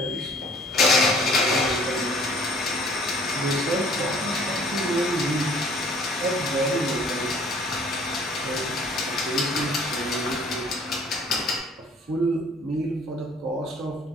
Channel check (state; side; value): normal; both; correlation 0.54